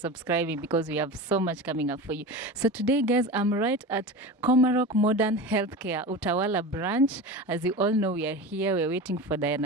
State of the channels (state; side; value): normal; both; correlation 0.29